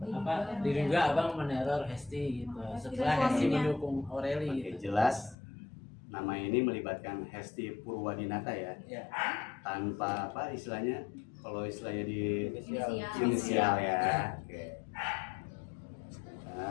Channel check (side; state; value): right; drops out; at 5.4 s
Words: Diduga abang meneror Hesti gitu. Setelah Hesti mendukung Aureli Oke, gitu. jelas nama ini melibatkan Hesti Purwadinata ya. Ya. Tanpa apa istilahnya? Kalau istilahnya di Inisial. inisial ya. Oke.